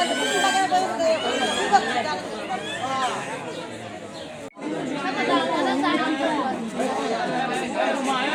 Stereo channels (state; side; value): identical; both; correlation 1.00